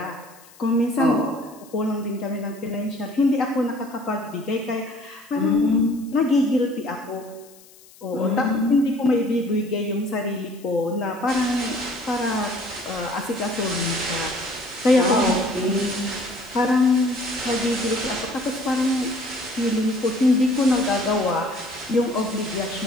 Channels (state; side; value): noise; left; hiss, 24 dB below the sound